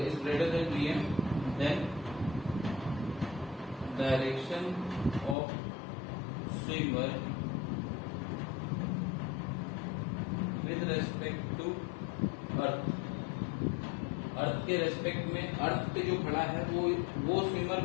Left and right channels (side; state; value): right; drops out; at 5.4 s